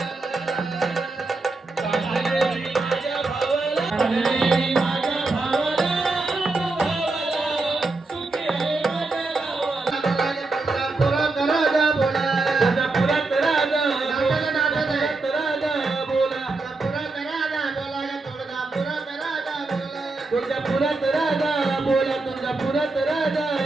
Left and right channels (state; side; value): quieter; left; 3.4 dB